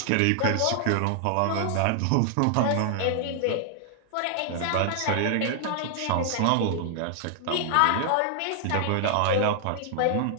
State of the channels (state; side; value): different; both; correlation 0.00